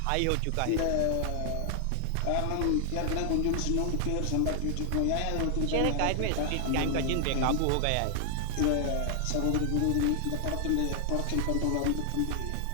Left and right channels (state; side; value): different; both; correlation 0.00